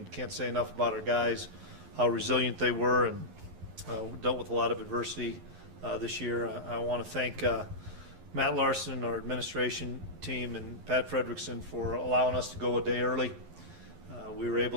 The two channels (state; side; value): late; left; 11 ms